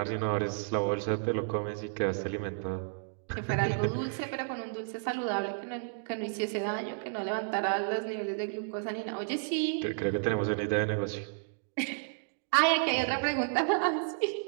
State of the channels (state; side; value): silent; left; digital silence